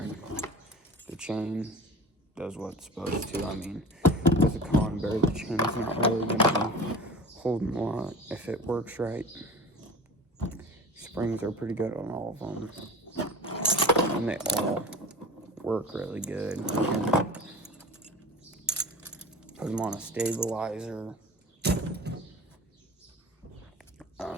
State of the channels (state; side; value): normal; both; correlation 0.36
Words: The chain does what it's supposed to. I mean, with a conibear, the chain's not really going to be holding a lot if it works right. Springs are pretty good on all of them, and they all work really good. You can put them on a stabilizer,